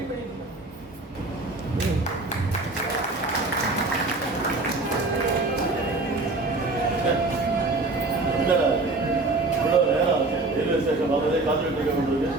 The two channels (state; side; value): quieter; left; 3.2 dB